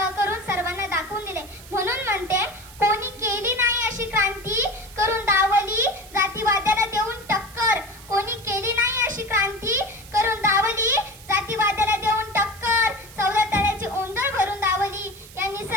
करून सर्वांना दाखवून दिले. म्हणून म्हणते, कोणी केली नाही अशी क्रांती करून दावली जातीवाद्याला देऊन टक्कर. कोणी केली नाही अशी क्रांती करून दावली जातीवाद्याला देऊन टक्कर. 14 तळ्याची ओंजळ भरून दावली. या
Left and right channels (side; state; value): right; noise; hiss, 19 dB below the sound